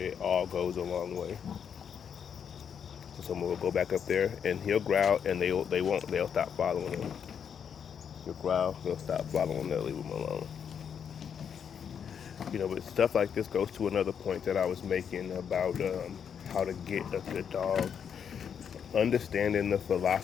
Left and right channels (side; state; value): right; quieter; 7.6 dB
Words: all goes a long way. So someone will go back up there and he'll growl, and they'll stop following him. He'll growl, they'll stop following, they'll leave him alone. But stuff like this goes to another point that I was making about how to get a good dog. Understanding the